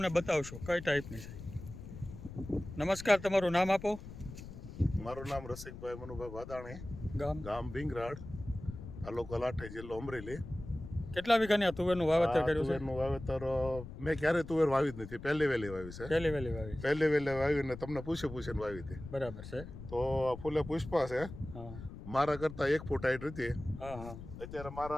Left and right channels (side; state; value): left; noise; rumble, 12 dB below the sound